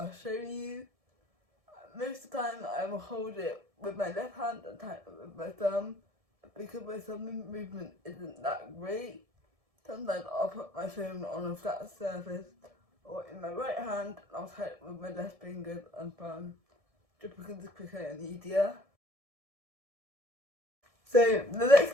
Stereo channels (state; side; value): late; left; 1.7 ms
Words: show you. Most of the time I will hold it with my left hand and type it with my thumb, because my thumb movement isn't that great. Sometimes I'll put my phone on a flat surface or in my right hand, and I'll type with my left fingers and thumb, just because it's quicker and easier. So the next